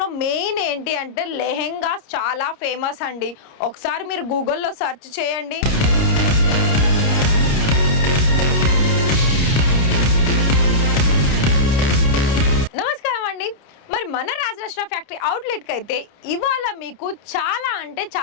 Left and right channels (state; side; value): late; right; 29 ms